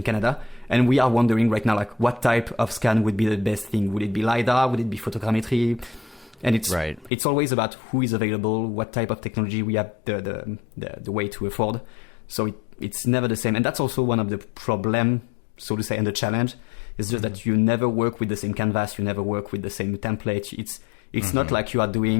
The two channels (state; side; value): drops out; right; at 7.1 s